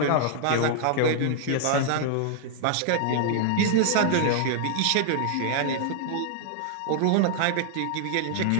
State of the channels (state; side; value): different; both; correlation -0.01